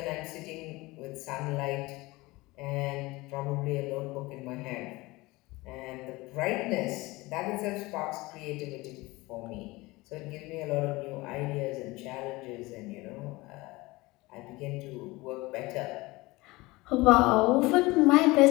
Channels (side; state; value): right; quieter; 21.7 dB